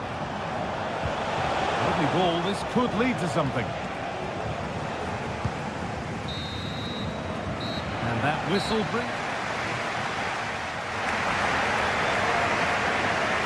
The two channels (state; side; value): identical; both; correlation 1.00